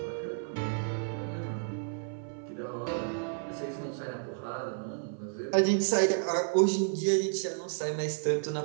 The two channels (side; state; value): left; silent; 57 dB below the other